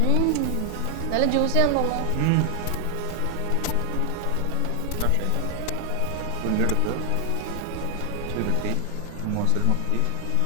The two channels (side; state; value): both; different; correlation 0.00